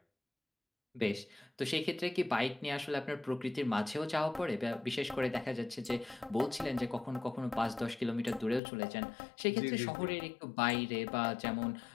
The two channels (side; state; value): right; drops out; at 8.6 s